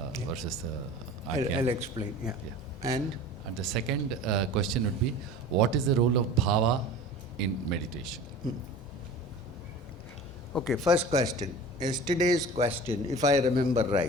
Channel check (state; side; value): normal; both; correlation 0.38